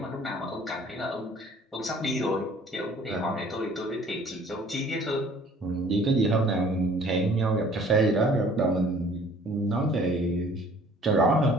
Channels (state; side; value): normal; both; correlation 0.54